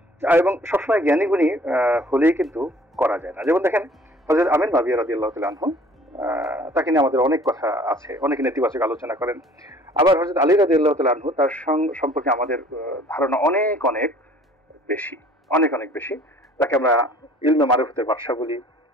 এবং সবসময় জ্ঞানী গুণী হলেই কিন্তু করা যায় না। যেমন দেখেন হযরত আমির মাবিয়া রাদিয়াল্লাহু তাআলা আনহু, তাকে নিয়ে আমাদের অনেক কথা আছে, অনেকে নেতিবাচক আলোচনা করেন। আবার হযরত আলী রাদিয়াল্লাহু তাআলা আনহু, তার সম্পর্কে আমাদের ধারণা অনেক বেশি। তাকে আমরা ইলমে মারিফতের বাদশা বলি,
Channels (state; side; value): normal; both; correlation 0.53